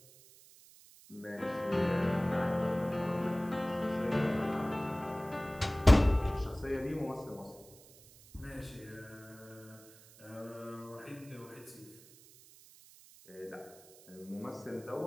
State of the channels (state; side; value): noise; right; hiss, 23 dB below the sound